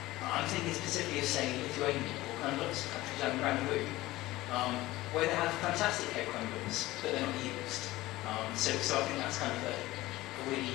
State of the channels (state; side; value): quieter; right; 17.9 dB